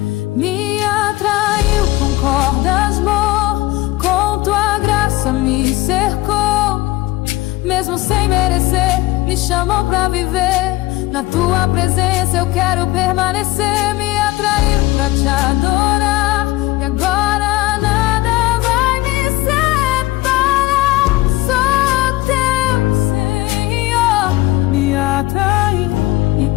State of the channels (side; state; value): right; quieter; 18.5 dB